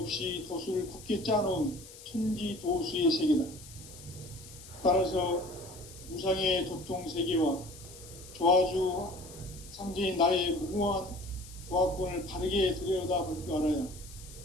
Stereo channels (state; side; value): noise; left; hiss, 17 dB below the sound